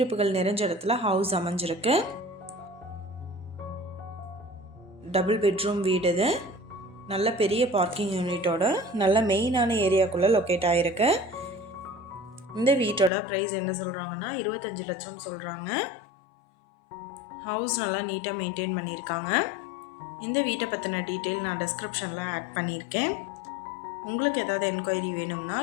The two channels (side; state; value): right; drops out; at 13.1 s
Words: நிறைஞ்ச இடத்துல ஹவுஸ் அமைஞ்சிருக்கு. டபுள் பெட்ரூம் வீடு. இது நல்ல பெரிய பார்க்கிங் யூனிட்டோட நல்ல மெயினான ஏரியாக்குள்ளே லொக்கேட் ஆகிருக்கு. இந்த வீட்டோட ப்ரைஸ் என்ன சொல்கிறாங்கன்னா 25 லட்சம் சொல்கிறாங்க. ஹவுஸ் நல்லா நீட்டாக மெயின்டைன் பண்ணியிருக்காங்க. இந்த வீட்டை பற்றின டீட்டெயில் நான் டிஸ்கிரிப்ஷனில் ஆட் பண்ணியிருக்கேன். உங்களுக்கு ஏதாவது என்கொயரி வேணும்னா